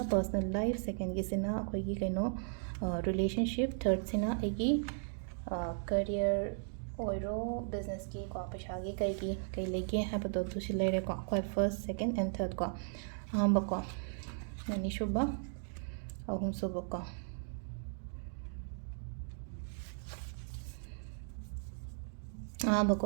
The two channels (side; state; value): left; silent; digital silence